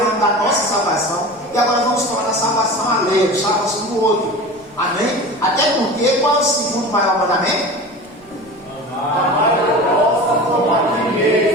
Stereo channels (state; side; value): noise; left; rumble, 29 dB below the sound